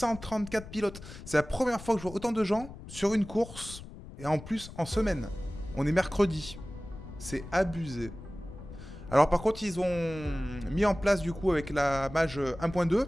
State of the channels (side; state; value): left; noise; rumble, 14 dB below the sound